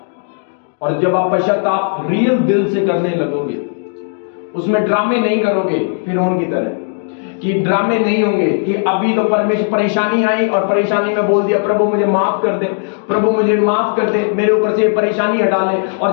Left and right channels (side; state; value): right; silent; digital silence